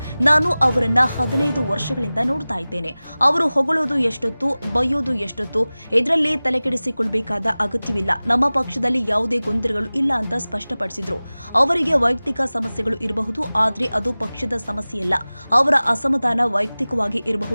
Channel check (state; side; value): inverted; both; correlation -0.98